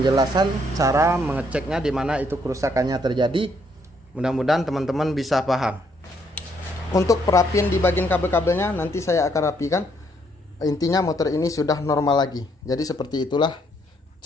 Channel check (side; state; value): both; normal; correlation 0.70